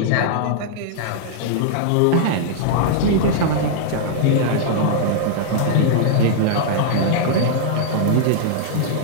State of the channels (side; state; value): both; different; correlation -0.01